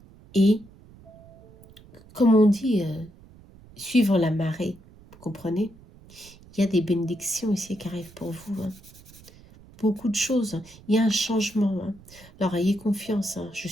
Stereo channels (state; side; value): noise; right; rumble, 23 dB below the sound